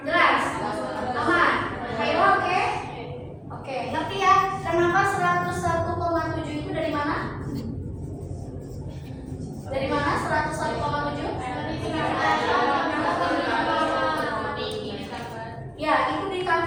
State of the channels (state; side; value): identical; both; correlation 1.00